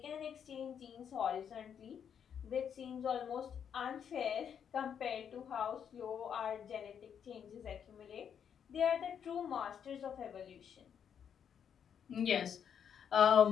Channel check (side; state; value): right; quieter; 8.0 dB